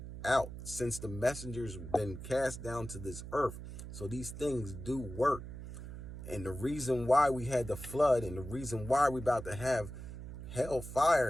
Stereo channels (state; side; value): noise; right; hum, 10 dB below the sound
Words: out since the messengers been cast down to this earth. So these things do work. And the reason why we had the flood, and the reason why we about to have